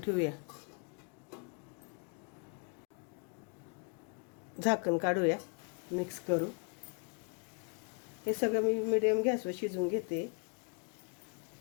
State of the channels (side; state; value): right; quieter; 39.1 dB